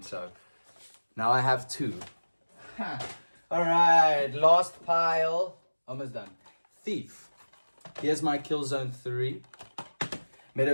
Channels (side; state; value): both; inverted; correlation -1.00